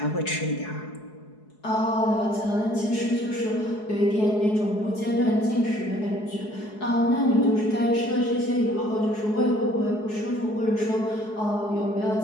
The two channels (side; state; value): right; late; 4.7 ms